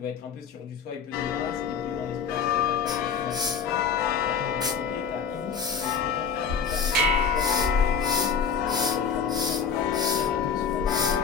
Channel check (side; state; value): right; quieter; 6.4 dB